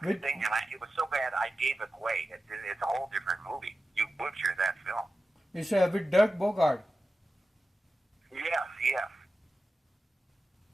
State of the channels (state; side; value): normal; both; correlation 0.93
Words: was so bad I gave it away. It's a whole different movie. You butcher that film. It's with Doug Bogart. Yes.